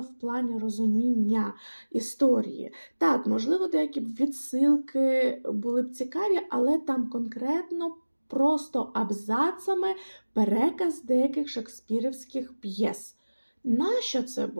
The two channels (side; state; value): both; inverted; correlation -1.00